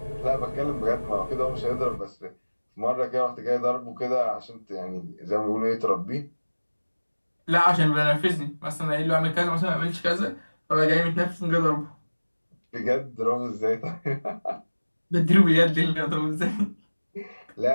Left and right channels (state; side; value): inverted; both; correlation -1.00